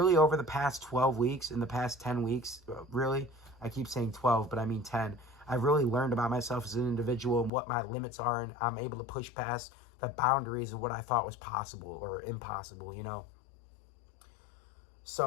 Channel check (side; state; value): right; drops out; at 7.5 s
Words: over the past 12 weeks, in the past 10 weeks, really, I keep saying 12, but I mean 10, I've really learned about myself as an individual and what my limits are, and I'm able to push past the boundaries of what I thought was possible or impossible,